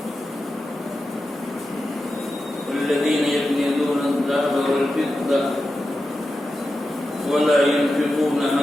والذين يكنزون الذهب والفضة ولا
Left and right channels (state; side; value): normal; both; correlation 0.91